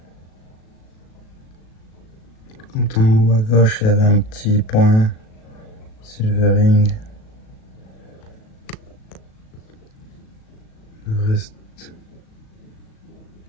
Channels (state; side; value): late; right; 37 ms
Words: Quand en haut à gauche, il y avait un petit point. Silvering. Le reste,